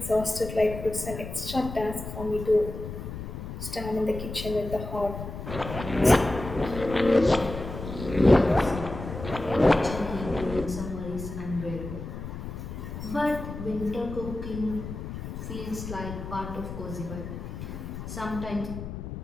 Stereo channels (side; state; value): left; noise; rumble, 8 dB below the sound